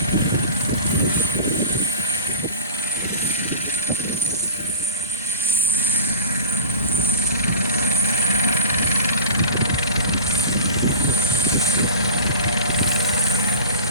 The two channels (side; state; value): both; inverted; correlation -0.35